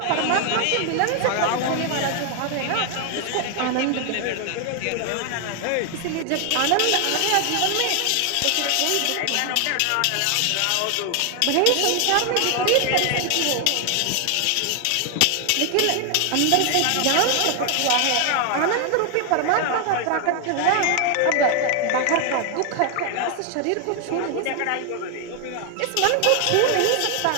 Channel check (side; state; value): both; different; correlation 0.00